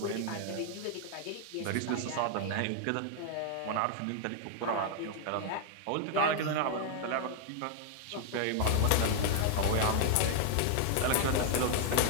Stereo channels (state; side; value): different; both; correlation 0.00